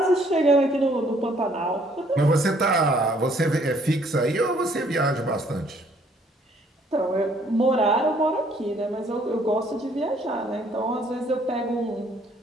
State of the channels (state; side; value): normal; both; correlation 0.63